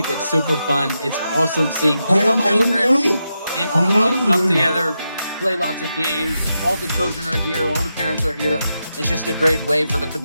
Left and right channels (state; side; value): inverted; both; correlation -0.87